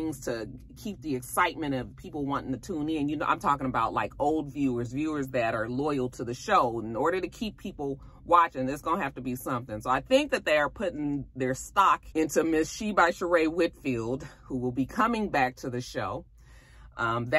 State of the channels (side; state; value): both; identical; correlation 1.00